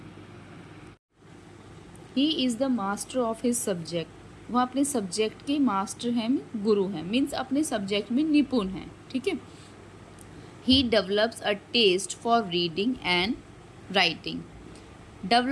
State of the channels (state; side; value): identical; both; correlation 1.00